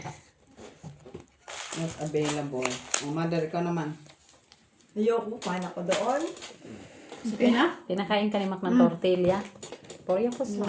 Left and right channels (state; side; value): identical; both; correlation 1.00